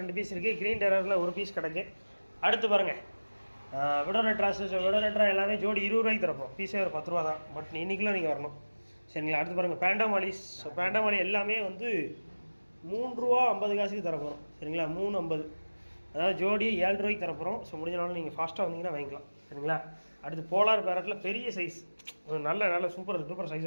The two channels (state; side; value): inverted; both; correlation -1.00